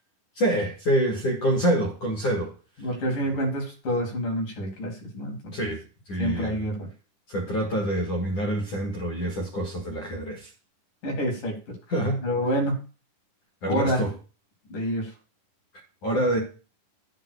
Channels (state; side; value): late; right; 10 ms